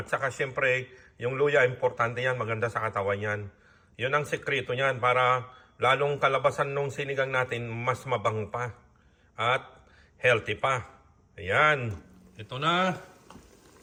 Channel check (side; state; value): both; identical; correlation 1.00